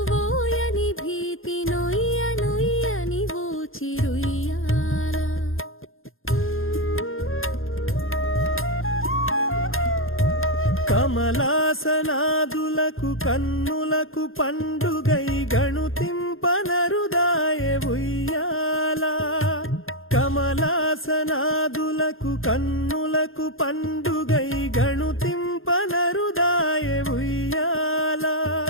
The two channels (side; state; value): right; late; 0.60 ms